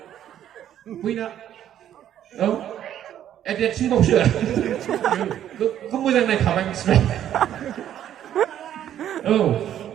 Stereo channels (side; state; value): left; quieter; 10.9 dB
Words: बैना औ देरसिनबावसो बेखौ मोजां नायखाबाय मिथिबाय औ